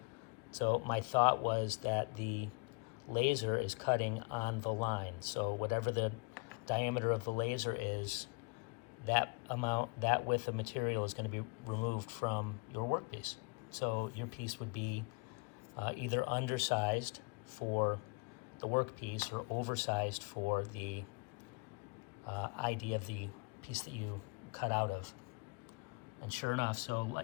So my thought was that the laser is cutting on the line. So whatever the diameter of the laser is, that width of material is going to be removed from your workpiece. So your piece would be either undersized for the workpiece or oversized for the ID of the piece that you cut out of. And sure enough, so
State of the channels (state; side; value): quieter; right; 30.8 dB